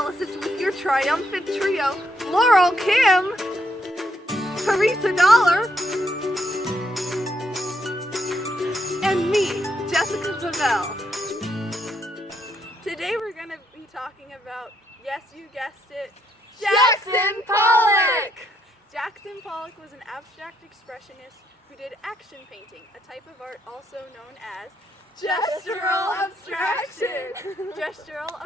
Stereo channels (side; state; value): both; normal; correlation 0.75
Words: with your triumphant trio, Laurel Kim, Teresa Dollar, and me, Jessica Pavel. Today we're going to be talking about, yes, you guessed it, Jackson Pollock! Jackson Pollock was an abstract expressionist who did action painting, a type of art also known as gestural abstraction. Gestural